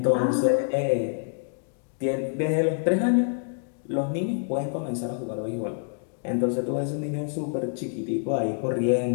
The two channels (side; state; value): right; silent; digital silence